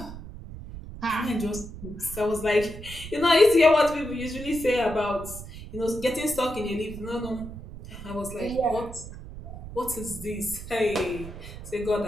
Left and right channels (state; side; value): noise; right; rumble, 12 dB below the sound